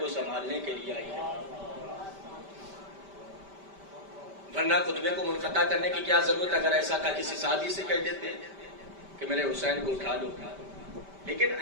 سنبھالنے کے لیے آئی ہے، ورنہ خطبے کو منقطع کرنے کی کیا ضرورت؟ اگر ایسا تھا کسی صحابی سے کہہ دیتے کہ میرے حسین کو اٹھا لو، لیکن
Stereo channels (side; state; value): left; late; 5.1 ms